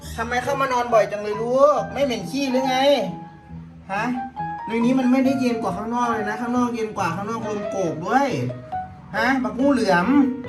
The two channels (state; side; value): identical; both; correlation 1.00